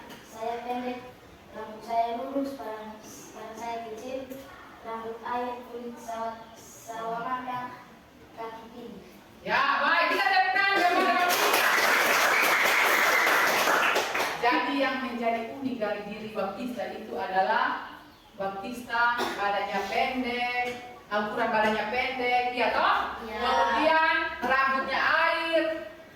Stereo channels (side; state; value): both; identical; correlation 1.00